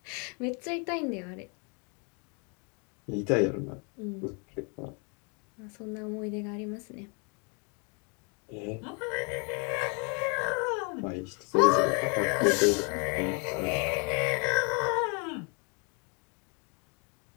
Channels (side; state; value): right; quieter; 35.3 dB